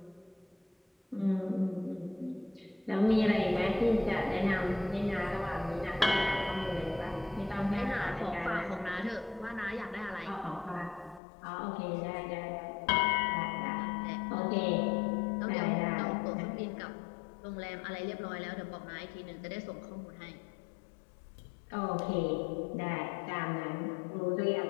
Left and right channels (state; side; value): drops out; right; at 11.2 s